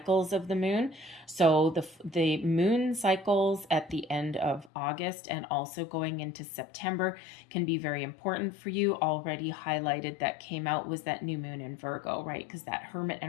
of the moon. So the moon cycles at the end of August and also going into September can be very important for you. Already highlighted that came out was that new moon in Virgo, right? Because that hermit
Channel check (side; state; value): right; drops out; at 4.7 s